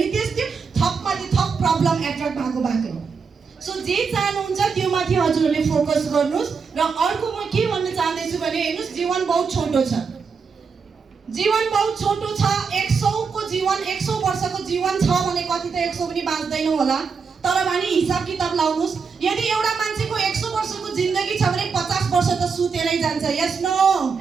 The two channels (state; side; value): quieter; left; 5.5 dB